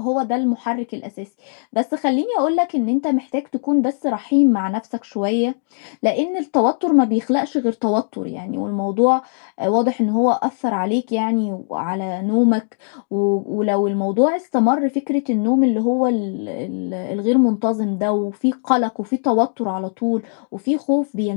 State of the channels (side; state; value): right; silent; digital silence